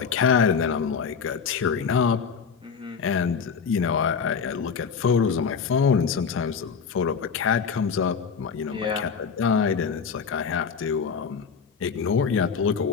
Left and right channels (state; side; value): quieter; right; 6.1 dB